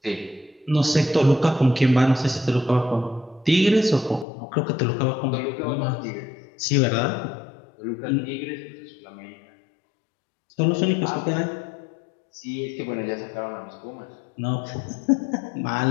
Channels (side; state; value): right; drops out; at 4.2 s